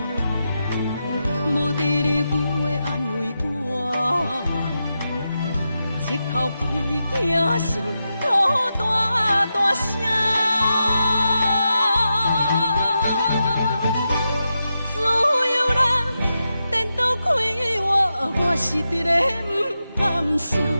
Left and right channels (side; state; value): both; inverted; correlation -0.88